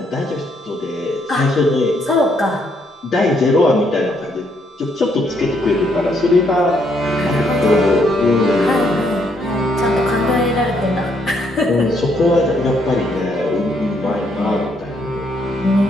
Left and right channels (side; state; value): both; normal; correlation 0.72